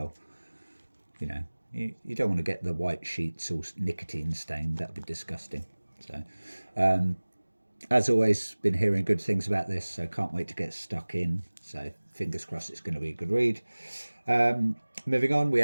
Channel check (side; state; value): both; inverted; correlation -1.00